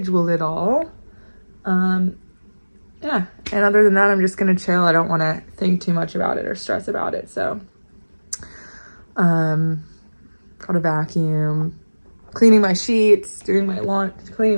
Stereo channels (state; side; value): inverted; both; correlation -1.00